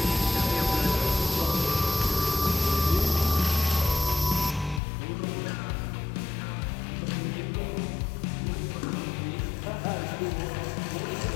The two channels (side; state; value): right; drops out; at 4.8 s